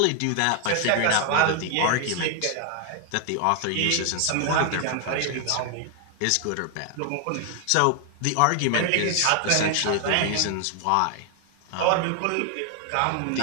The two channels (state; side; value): different; both; correlation 0.00